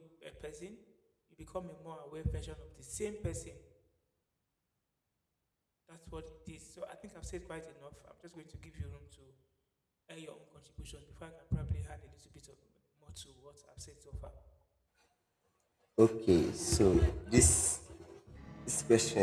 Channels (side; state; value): both; identical; correlation 1.00